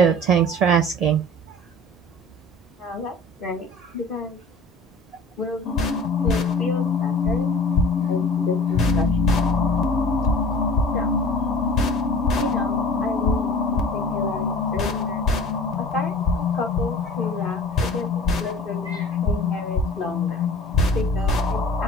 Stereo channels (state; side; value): normal; both; correlation 0.42